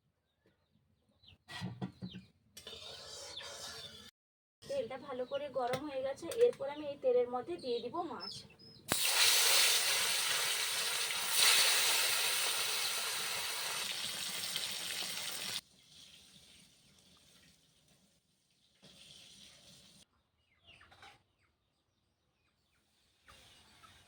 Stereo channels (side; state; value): both; identical; correlation 1.00